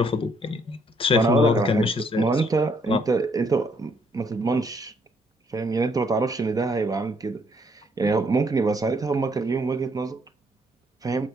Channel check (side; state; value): both; normal; correlation 0.69